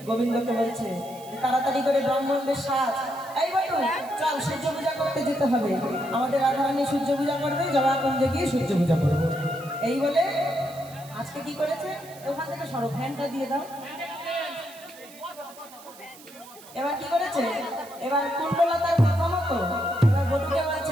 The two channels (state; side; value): noise; right; hiss, 20 dB below the sound